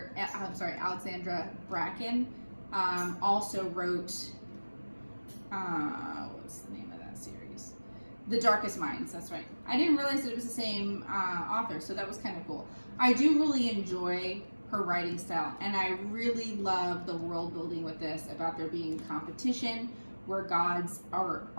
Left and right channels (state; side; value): inverted; both; correlation -1.00